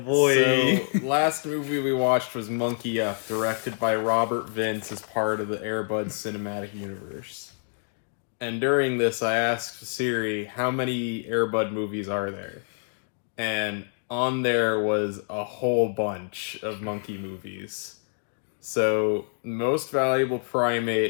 So, last movie we watched was Monkey Up, directed by Robert Vince as part of the Air Bud cinematic universe. And during this, I asked Siri, how many Air Bud movies are there? And on there was a whole bunch of monkey movies. So, Most Valuable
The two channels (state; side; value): silent; right; digital silence